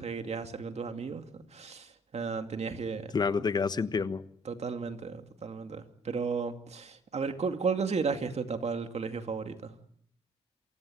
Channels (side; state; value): both; normal; correlation 0.57